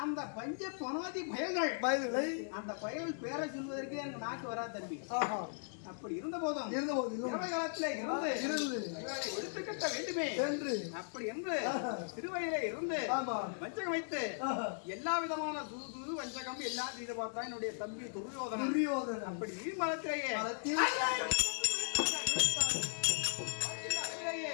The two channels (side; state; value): right; silent; digital silence